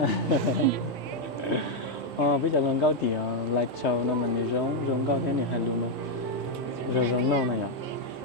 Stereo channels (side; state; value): both; normal; correlation 0.00